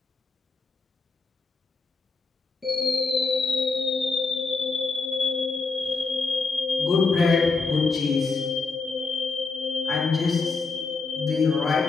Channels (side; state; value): right; quieter; 4.3 dB